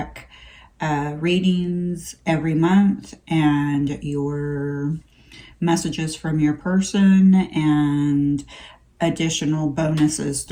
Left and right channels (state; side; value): identical; both; correlation 1.00